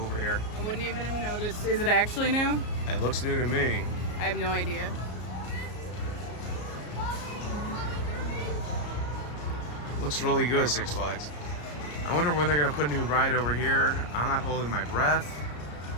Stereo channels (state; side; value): late; right; 33 ms